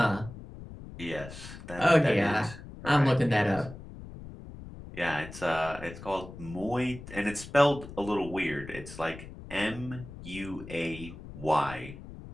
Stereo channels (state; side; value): noise; left; rumble, 14 dB below the sound